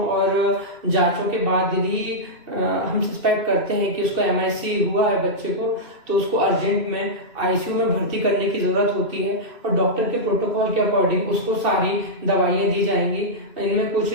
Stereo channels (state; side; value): late; left; 2.6 ms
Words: और जांचों के बाद यदि हम सस्पेक्ट करते हैं कि उसको MIC हुआ है बच्चे को, तो उसको अर्जेंट में ICU में भर्ती करने की जरूरत होती है और डॉक्टर के प्रोटोकॉल के अकॉर्डिंग उसको सारी दवाइयां दी जाएंगी। इनमें कुछ